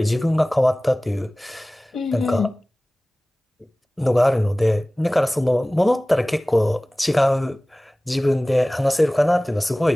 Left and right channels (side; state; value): both; normal; correlation 0.98